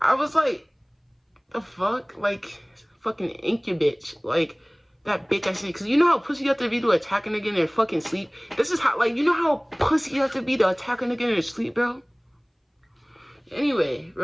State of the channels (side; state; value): both; identical; correlation 1.00